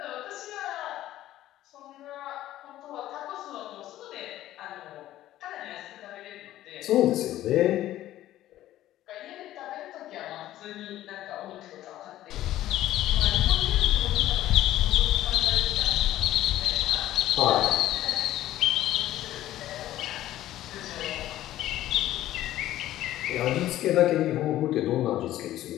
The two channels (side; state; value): right; quieter; 13.9 dB